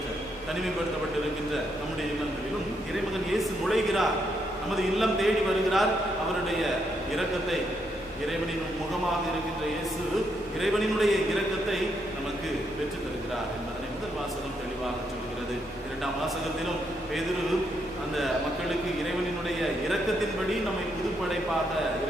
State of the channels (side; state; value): both; normal; correlation 0.77